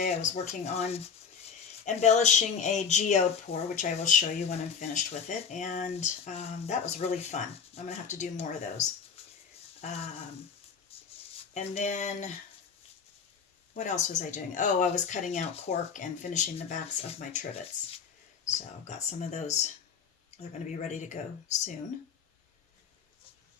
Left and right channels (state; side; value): quieter; right; 6.4 dB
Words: I was working on embellishing a geode pour, which I will show you when I'm finished with it, and that was really fun. I'm gonna have to do more of those. And then what else was I doing? Oh, I was cutting out cork and finishing the backs of my trivets. So I've got some of those. They're going to be ready to go soon.